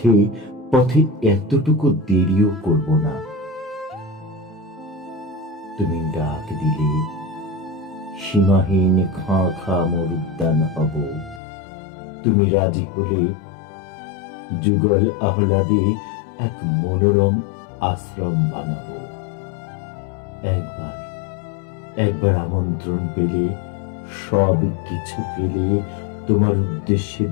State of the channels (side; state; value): right; drops out; at 11.4 s